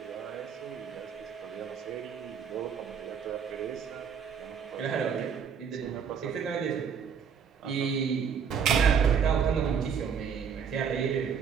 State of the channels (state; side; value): quieter; left; 7.0 dB